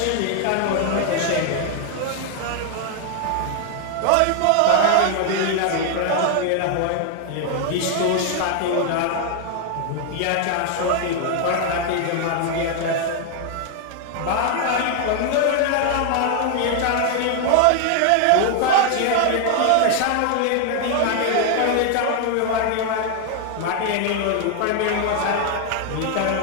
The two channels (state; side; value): different; both; correlation 0.00